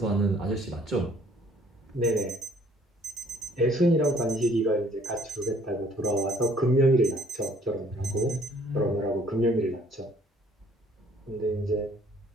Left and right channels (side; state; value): both; normal; correlation 0.60